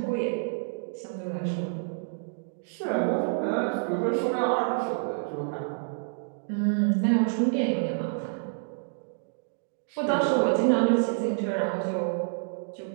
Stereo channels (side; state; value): left; silent; digital silence